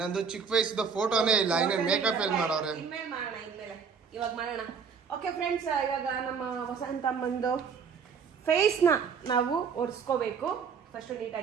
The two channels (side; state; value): left; quieter; 6.2 dB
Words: ಚಿಕ್ಕ ವಯಸ್ಸದ ಫೋಟೋನೇ ಇಲ್ಲ. ಇನ್ನ ಮೇಕಪ್ ಎಲ್ಲಿ ಮಾಡೋರೆ? ಇನ್ಮೇಲೆ ಮಾಡೋಣ, ಇವಾಗ ಮಾಡೋಣ. ಓಕೆ ಫ್ರೆಂಡ್ಸ್, ಇವಾಗ ನಮ್ಮ ವಸಂತಮ್ಮಂದು ಫೇಸ್ನ ನಾವು ಒರೆಸ್ಕೋಬೇಕು ಫಸ್ಟ್